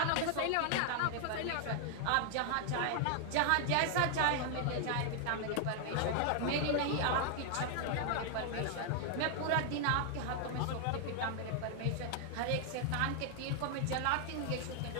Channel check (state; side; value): different; both; correlation 0.00